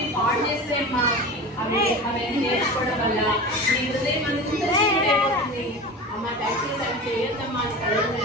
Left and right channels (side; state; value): both; normal; correlation 0.31